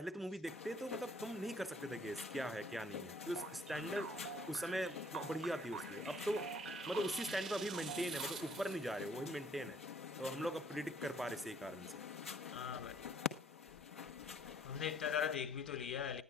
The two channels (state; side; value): normal; both; correlation 0.62